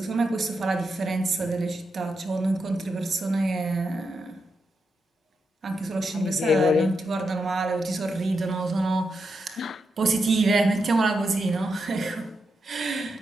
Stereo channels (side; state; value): both; normal; correlation 0.85